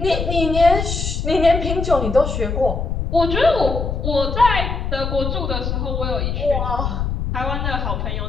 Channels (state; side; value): noise; left; rumble, 2 dB below the sound